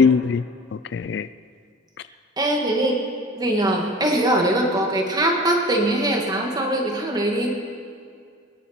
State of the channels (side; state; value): both; normal; correlation 0.40